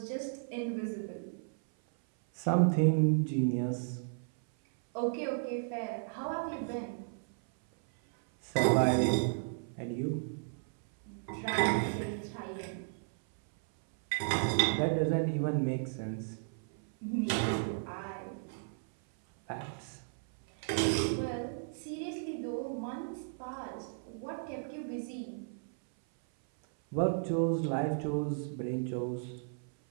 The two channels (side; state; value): left; silent; 55 dB below the other